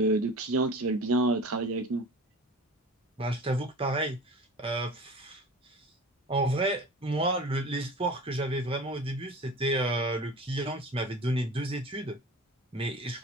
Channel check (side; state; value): both; normal; correlation 0.37